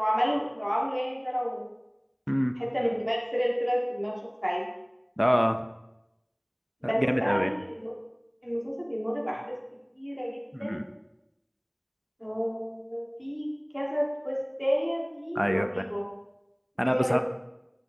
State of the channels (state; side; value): identical; both; correlation 1.00